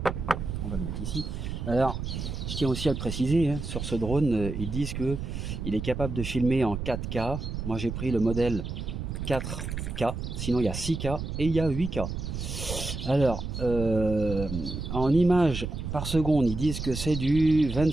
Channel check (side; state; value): right; noise; rumble, 5 dB below the sound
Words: On va le mettre ici. Alors, je tiens aussi à le préciser, hein, sur ce drone, ils disent qu'il est capable de filmer en 4K. Moi, j'ai pris le modèle 4K. Sinon, il y a 6K et il y a 8K. Alors, en images par seconde, ils disent que c'est du